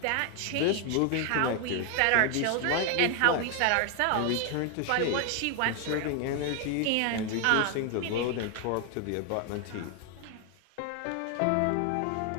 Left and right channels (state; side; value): different; both; correlation 0.00